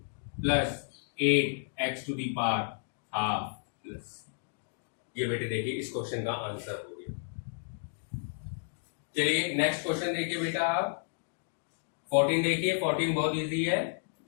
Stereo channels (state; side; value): silent; right; digital silence